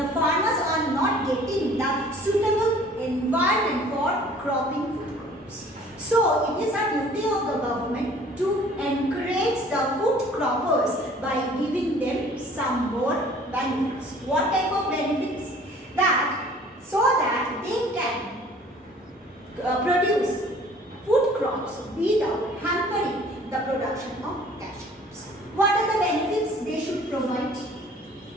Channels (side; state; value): both; normal; correlation 0.52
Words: farmers are not getting the suitable environment for cropping food crops. So it is a duty of the government to encourage the food croppers by giving them some more benefits. What type of benefits? So that they can produce food crops without hampering the production of cash crops. What are the benefits they should provide?